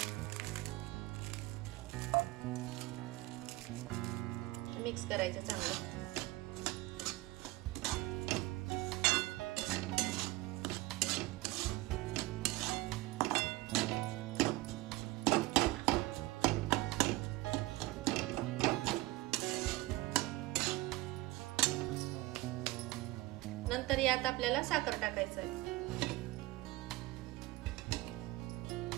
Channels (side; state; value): left; quieter; 19.7 dB